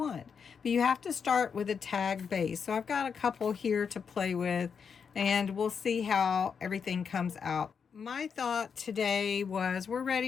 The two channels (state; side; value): quieter; right; 6.4 dB